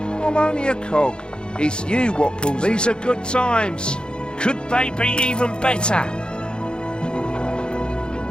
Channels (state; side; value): late; right; 0.050 ms